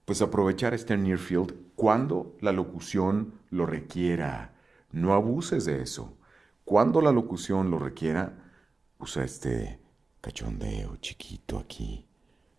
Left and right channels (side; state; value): left; quieter; 3.7 dB